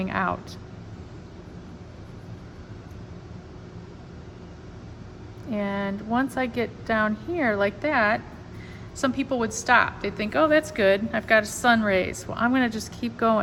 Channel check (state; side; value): identical; both; correlation 1.00